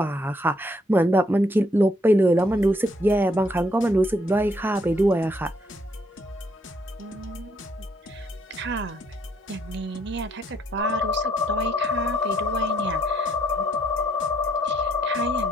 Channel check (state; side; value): normal; both; correlation 0.71